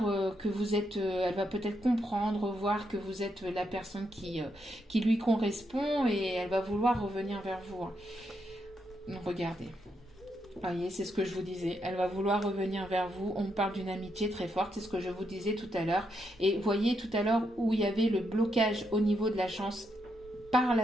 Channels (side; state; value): both; normal; correlation 0.80